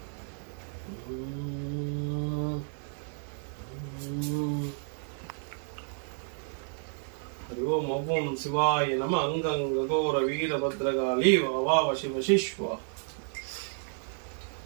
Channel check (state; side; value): silent; left; 57 dB below the other